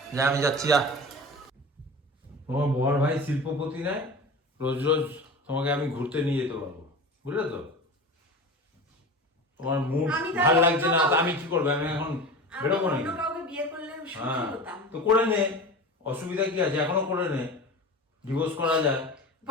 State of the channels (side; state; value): both; normal; correlation 0.32